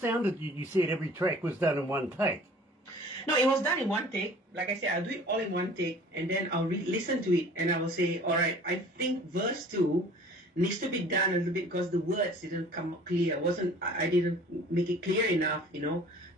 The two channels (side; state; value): both; normal; correlation 0.48